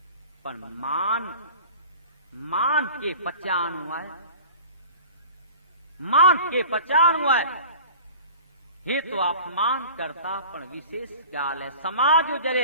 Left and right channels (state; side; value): inverted; both; correlation -0.42